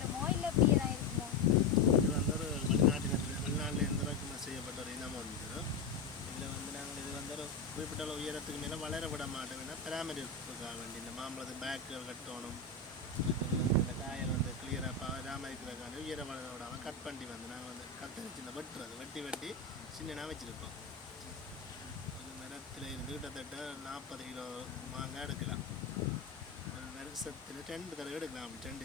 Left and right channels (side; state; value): right; quieter; 4.2 dB